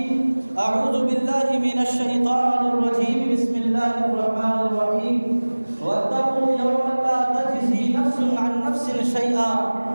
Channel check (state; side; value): inverted; both; correlation -1.00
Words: أعوذ بالله من الشيطان الرجيم بسم الله الرحمن الرحيم واتقوا يوما لا تجزي نفس عن نفس شيئا